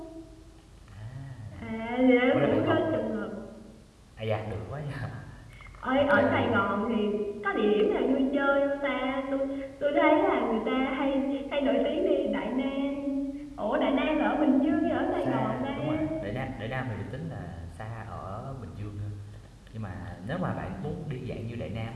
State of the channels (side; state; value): both; identical; correlation 1.00